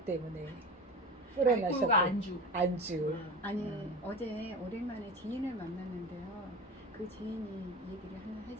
때문에 불어나셨고 알코올과 안주. 안주. 어제 오랜만에 지인을 만났는데요. 그 지인이 얘기를 하나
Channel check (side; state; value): both; normal; correlation 0.30